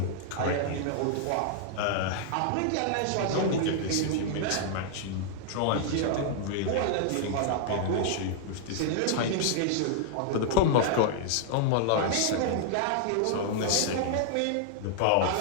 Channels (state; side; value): different; both; correlation -0.01